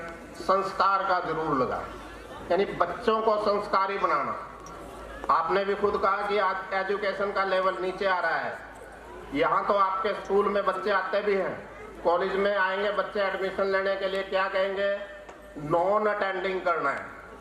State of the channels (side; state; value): both; identical; correlation 1.00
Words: संस्कार का जरूर लगाए, यानी बच्चों को संस्कारी बनाना। आपने भी खुद कहा कि आज एजुकेशन का लेवल नीचे आ रहा है। यहाँ तो आपके स्कूल में बच्चे आते भी हैं, कॉलेज में आएंगे बच्चे एडमिशन लेने के लिए, क्या कहेंगे, नॉन अटेंडिंग करना है।